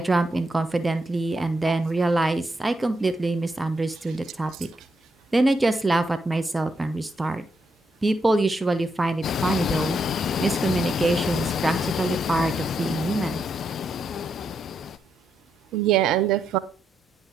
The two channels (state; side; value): normal; both; correlation 0.80